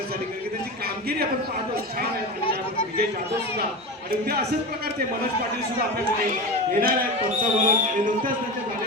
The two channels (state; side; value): normal; both; correlation 0.24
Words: कारण की त्यांची कामगिरी आपण पाहतो छान आहे विजय जाधव सुद्धा आणि उद्या असेच प्रकारचे मनोज पाटील सुद्धा आपल्याकडे येणार आहेत पंच म्हणून आणि नुकत्याच त्यांच्या